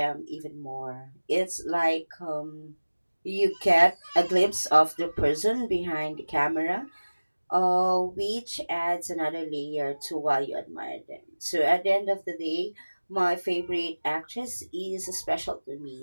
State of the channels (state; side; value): inverted; both; correlation -1.00